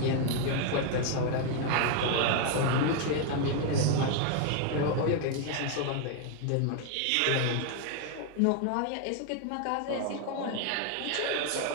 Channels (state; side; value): different; both; correlation 0.00